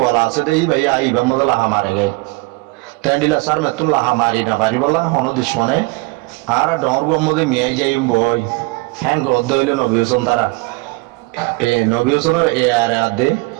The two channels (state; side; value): quieter; left; 24.2 dB